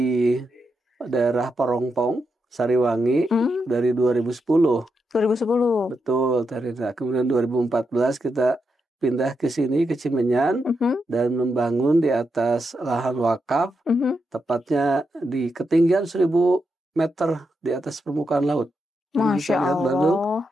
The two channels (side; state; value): both; normal; correlation 0.85